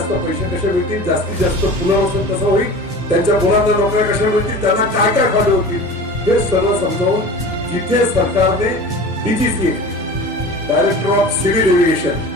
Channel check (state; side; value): normal; both; correlation 0.37